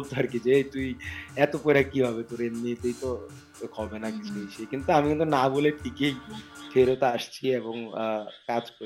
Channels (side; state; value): both; identical; correlation 1.00